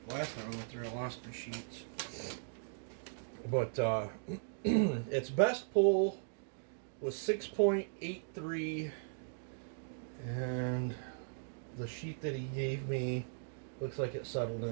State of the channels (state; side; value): silent; left; digital silence